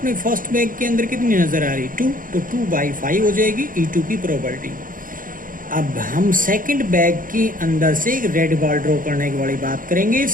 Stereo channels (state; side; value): late; left; 0.40 ms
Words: फर्स्ट बैग के अंदर कितनी नजर आ रही, 2. तो 2/5 हो जाएगी E2 की प्रोबेबिलिटी. अब हम सेकंड बैग के अंदर से एक रेड बॉल ड्रॉ करने की वाली बात करेंगे.